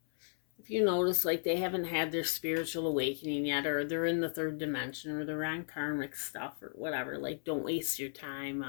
you notice like they haven't had their spiritual awakening yet, or they're in the third dimension, or they're on karmic stuff or whatever, like don't waste your time.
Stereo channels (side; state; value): right; silent; 54 dB below the other